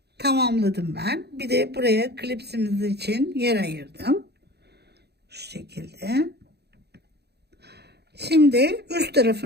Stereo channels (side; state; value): left; late; 0.48 ms